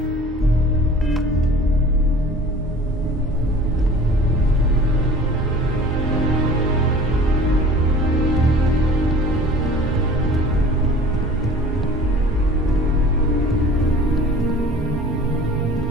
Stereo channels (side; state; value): both; normal; correlation 0.44